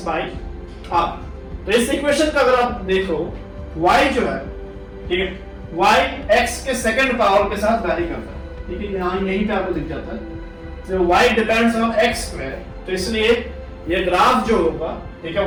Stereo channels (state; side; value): identical; both; correlation 1.00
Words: बाय r। तो इस इक्वेशन का अगर आप देखो, y जो है, ठीक है, y x के सेकंड पावर के साथ वैरी करता है, ठीक है, यहाँ यहीं पे आपको दिख जाता है। तो y depends on x square, तो इसलिए ये ग्राफ जो होगा, ठीक है,